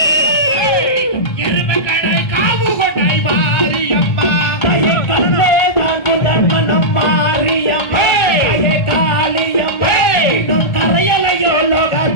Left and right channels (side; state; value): right; late; 1.4 ms